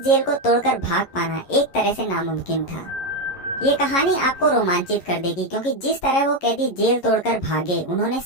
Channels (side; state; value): right; late; 11 ms